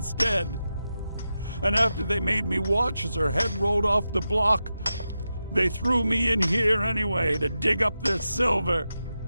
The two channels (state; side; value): inverted; both; correlation -0.90